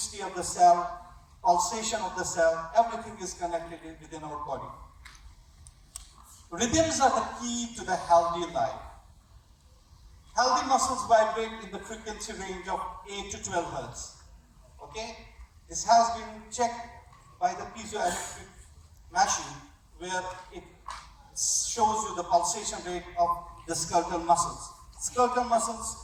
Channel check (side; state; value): both; identical; correlation 1.00